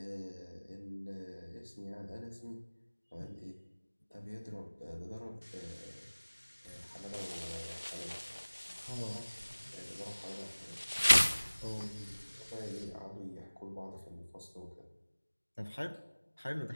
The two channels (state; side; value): inverted; both; correlation -1.00